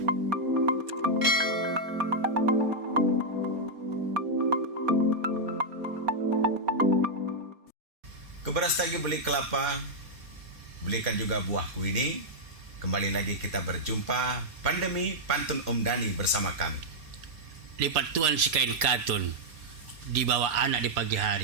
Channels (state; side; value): late; left; 4.2 ms